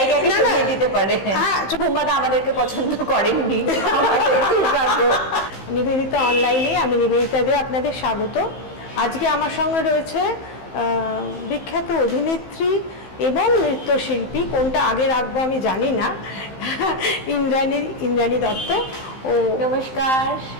না, সরিয়ে দিতে পারে। হ্যাঁ, বুম্বাদা আমাদেরকে পছন্দ করেননি। নিবেদিতা অনলাইনে, আমি নিবেদিতা দিয়ে আপনাদের স্বাগত। আজকে আমার সঙ্গে রয়েছে বিখ্যাত অভিনেত্রী এবং নৃত্যশিল্পী, কোনটা আগে রাখবো আমি জানি না, ইন্দ্রাণী দত্ত। ও নমস্কার।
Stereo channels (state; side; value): late; right; 15 ms